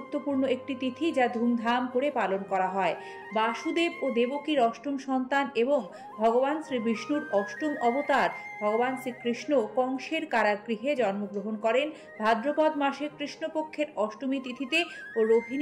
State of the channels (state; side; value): identical; both; correlation 1.00